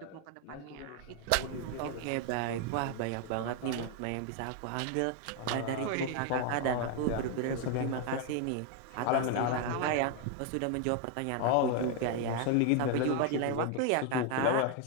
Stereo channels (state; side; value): different; both; correlation 0.01